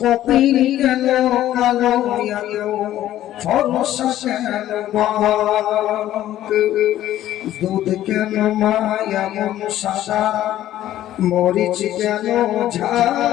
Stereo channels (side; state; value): right; quieter; 13.1 dB